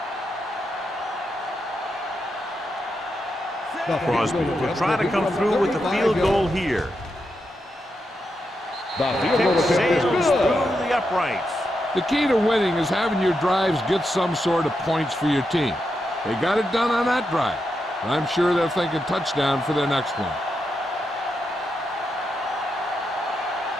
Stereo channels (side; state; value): both; normal; correlation 0.85